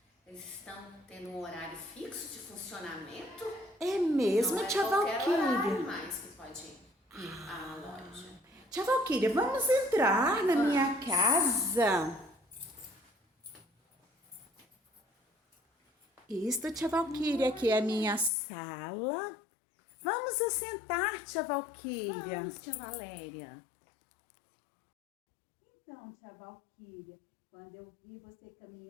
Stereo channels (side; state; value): right; drops out; at 18.3 s